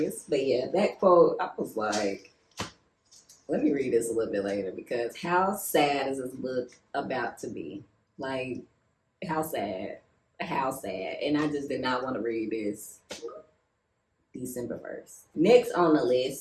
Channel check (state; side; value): identical; both; correlation 1.00